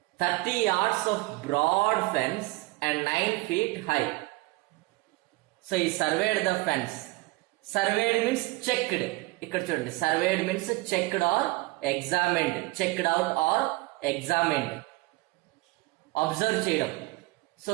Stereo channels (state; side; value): quieter; left; 22.3 dB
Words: 30 yards of broad fence and 9 feet high. So he surveyed the fence. Surveyed means checked. ఇక్కడ చూడండి, surveyed means checked or examined, checked out or examined. Observe చేయడం. So